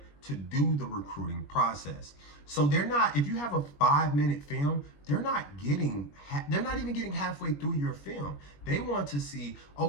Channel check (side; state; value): right; late; 21 ms